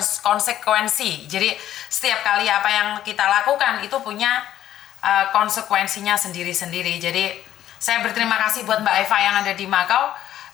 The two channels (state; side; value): quieter; right; 12.0 dB